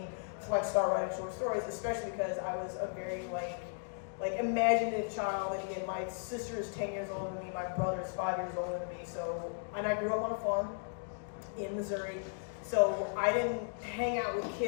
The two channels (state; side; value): silent; right; digital silence